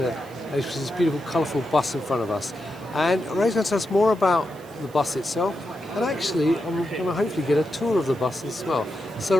Which is this beautiful colourful bus in front of us. And Ray's going to tell us more about the bus itself, and actually I'm going to hopefully get a tour of the bus as well. So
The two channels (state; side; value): noise; right; hiss, 25 dB below the sound